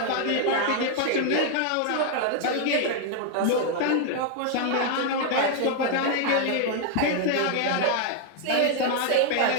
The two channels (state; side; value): different; both; correlation 0.00